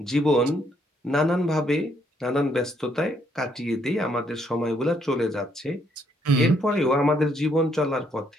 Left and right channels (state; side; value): normal; both; correlation 0.71